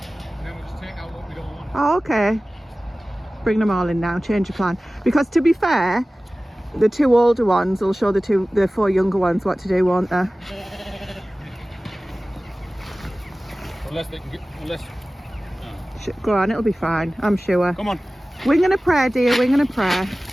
then we'll just take out what we don't want. Oh, okay. Bring them all in now, change your plan. Because to be fair, the 2 older ones will show the 4 younger ones what to do, won't they? Unless they can get... Go on, it'll be fine, I'm sure. Come on. Wing and a prayer, dear, wing and a prayer.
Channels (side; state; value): both; normal; correlation 0.97